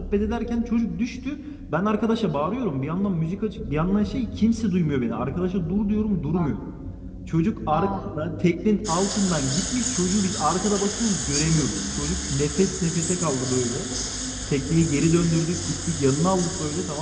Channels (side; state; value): both; identical; correlation 1.00